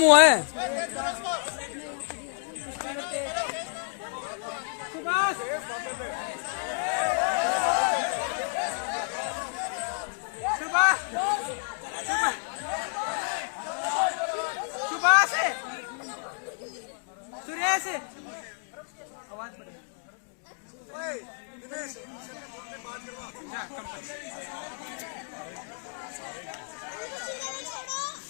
हुआ है। सुभाष सुभाष सुरेश आवाज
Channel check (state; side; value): silent; right; 58 dB below the other